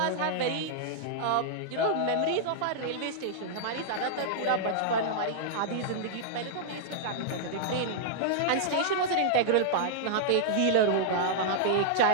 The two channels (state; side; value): different; both; correlation -0.02